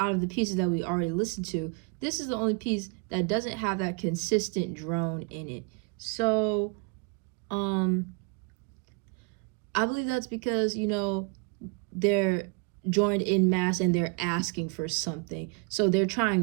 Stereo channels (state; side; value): quieter; left; 32.5 dB